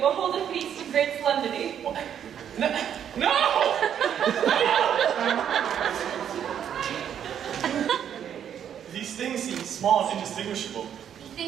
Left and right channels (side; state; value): left; quieter; 9.1 dB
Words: hold a feast of great solemnity. No! These things seem small and indistinguishable.